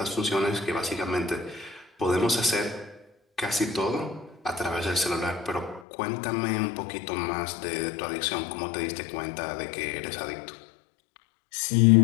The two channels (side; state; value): right; drops out; at 5.9 s